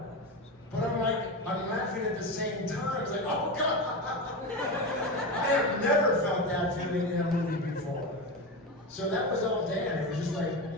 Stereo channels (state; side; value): normal; both; correlation 0.20